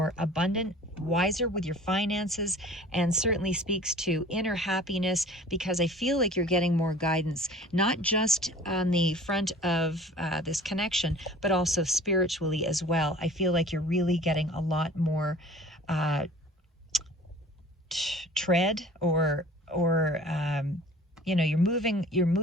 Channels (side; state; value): both; normal; correlation 0.46